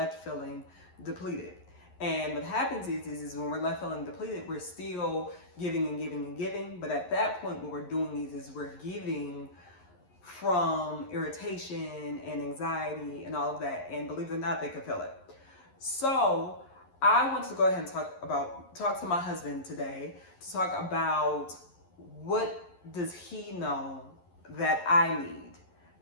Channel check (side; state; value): right; late; 11 ms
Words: feeling depleted. And what happens is when we're left feeling depleted, we're still giving and giving and giving. But at that point, what we're doing is we're giving from irritation and anxiety and all of that. And believe it or not, they can feel it. So I want to go ahead and talk to my husband today to talk about what does he know that I need,